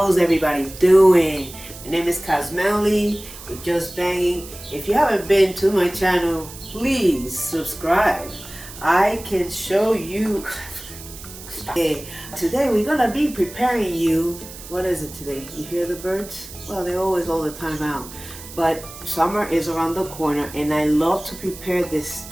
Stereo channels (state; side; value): noise; right; hiss, 15 dB below the sound